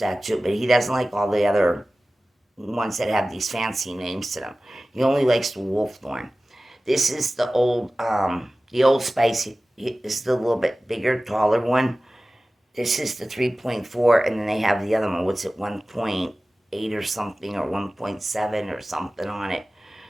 too, but he doesn't like all the other ones that have these fancy names to them. He only likes the Wolfthorn. This is the Old Spice. This is the little bit bigger, taller one. This is the 3.4, and then they have the other one. What's it, 1.8 or something, or 1.7 or something on it.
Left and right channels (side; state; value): both; normal; correlation 0.97